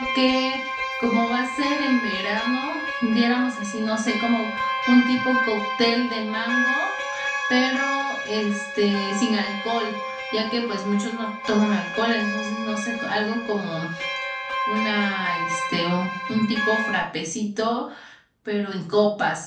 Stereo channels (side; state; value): both; identical; correlation 1.00